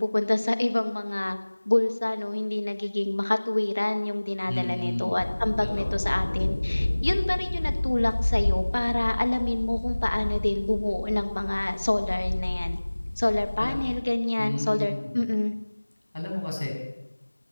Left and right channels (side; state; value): both; inverted; correlation -1.00